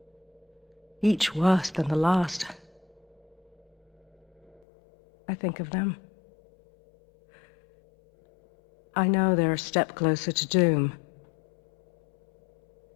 each worse than the last, I think of them. I know they're a step closer to doom.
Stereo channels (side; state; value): right; drops out; at 4.6 s